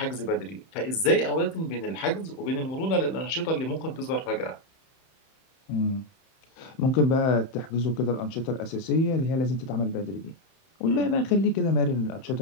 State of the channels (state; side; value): late; right; 31 ms